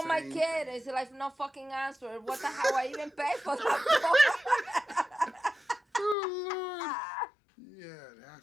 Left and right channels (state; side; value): drops out; right; at 6.2 s